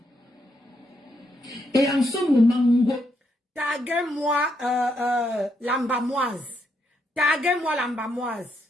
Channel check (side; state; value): both; normal; correlation 0.78